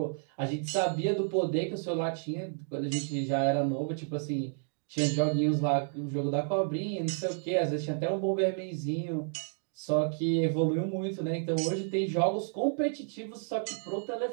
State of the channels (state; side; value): silent; left; digital silence